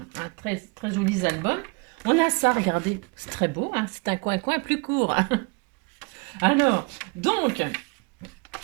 hein, très, très jolis albums. On a ça, regardez, c'est très beau, hein, c'est un coin plus court. Alors, donc,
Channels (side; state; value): left; quieter; 29.4 dB